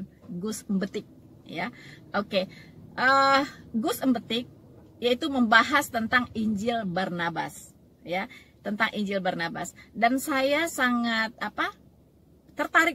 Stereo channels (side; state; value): both; identical; correlation 1.00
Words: Gus Embetik, ya. Oke, Gus Embetik yaitu membahas tentang Injil Barnabas, ya, tentang Injil Barnabas. Dan saya sangat